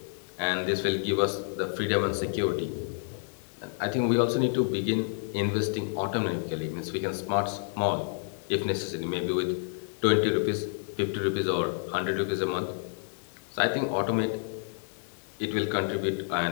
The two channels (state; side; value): silent; right; digital silence